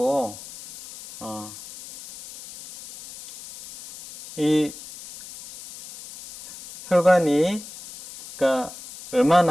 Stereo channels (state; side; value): noise; left; hiss, 16 dB below the sound